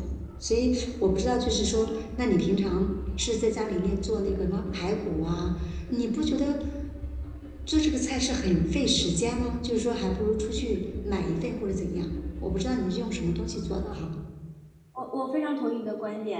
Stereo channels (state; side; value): identical; both; correlation 1.00